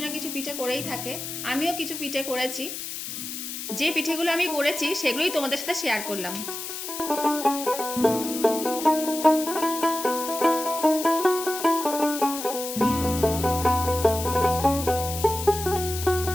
না কিছু পিঠে করেই থাকে। আমিও কিছু পিঠে করেছি। যে পিঠেগুলো আমি করেছি সেগুলোই তোমাদের সাথে শেয়ার করলাম।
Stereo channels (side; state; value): left; noise; hiss, 7 dB below the sound